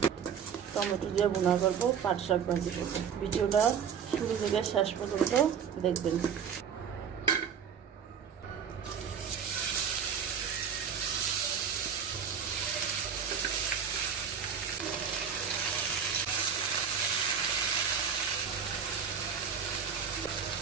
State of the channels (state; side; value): quieter; left; 7.4 dB